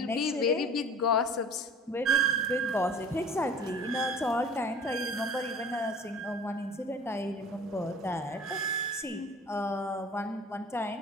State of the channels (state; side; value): normal; both; correlation 0.44